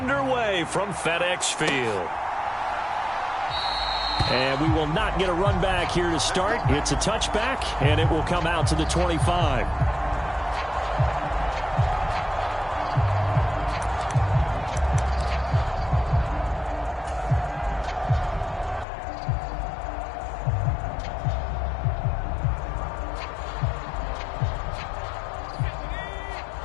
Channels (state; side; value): drops out; right; at 18.9 s